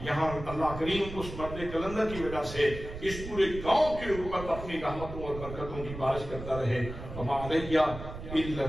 یہاں اللہ کریم اس مرد کلندر کی وجہ سے اس پورے گاؤں کے اوپر اپنی رحمتوں اور برکتوں کی بارش کرتا رہے. وما علیہ الا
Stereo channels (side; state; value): right; noise; rumble, 10 dB below the sound